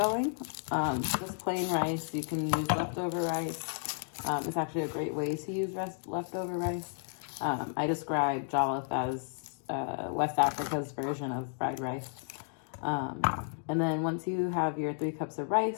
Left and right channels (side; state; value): right; silent; digital silence